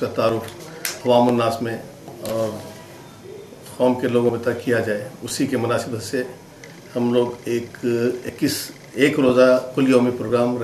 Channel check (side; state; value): both; identical; correlation 1.00